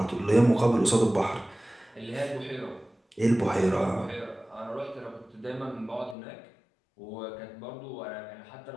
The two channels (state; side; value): drops out; right; at 6.2 s